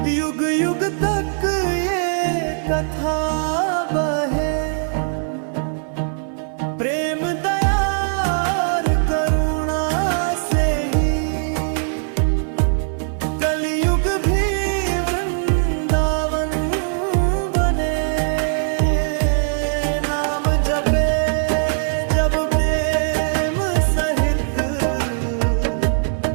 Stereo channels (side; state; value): left; silent; 66 dB below the other